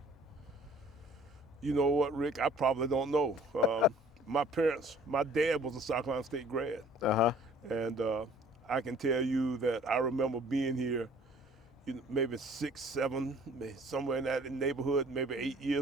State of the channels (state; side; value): normal; both; correlation 0.53